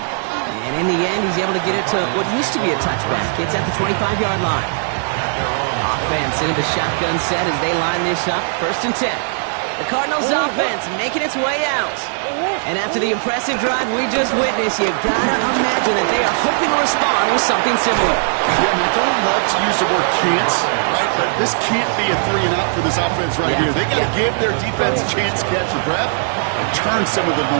And in the end, he's able to get it to what used to be a touchback. It's at the 25-yard line. Offense into the shotgun set as they line this up. 1st and 10. The Cardinals offense making its way out. And after the impressive drive we just witnessed, you gotta imagine that they are hoping to respond with something similar. Yeah, I don't love to use the word can't, right? But this can't be a 3 and out for this offense right here. They gotta give their defense a chance to catch a breath and turn some of the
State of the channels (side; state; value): left; silent; digital silence